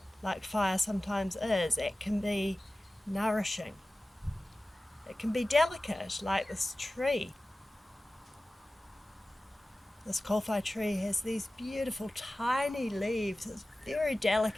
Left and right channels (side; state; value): both; normal; correlation 0.96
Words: like fire sometimes is. It can be nourishing. It can be delicate like this tree. This Kōwhai tree has these beautiful tiny leaves. It's very